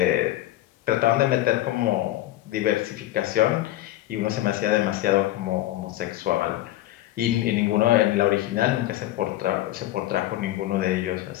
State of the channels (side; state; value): right; quieter; 15.2 dB